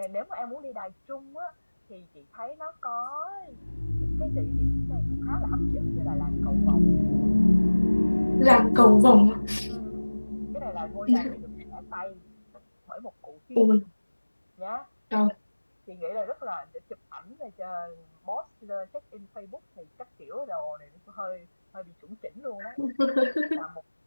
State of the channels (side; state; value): both; inverted; correlation -1.00